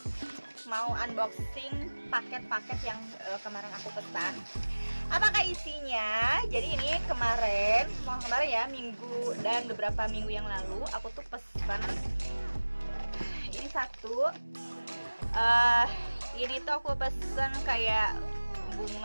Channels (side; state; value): both; inverted; correlation -1.00